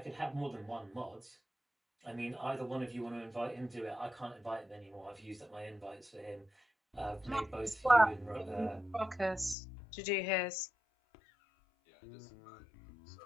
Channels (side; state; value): right; drops out; at 9.6 s